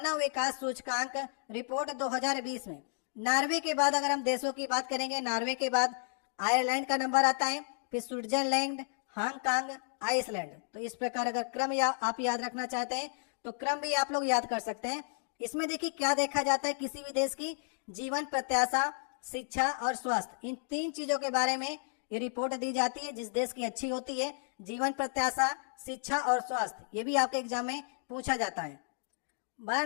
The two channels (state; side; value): silent; right; digital silence